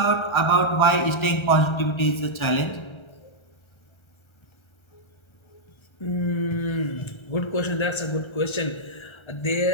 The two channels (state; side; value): late; right; 1.3 ms